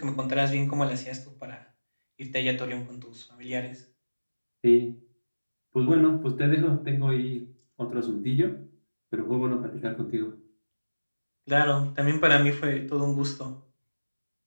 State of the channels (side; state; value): both; inverted; correlation -1.00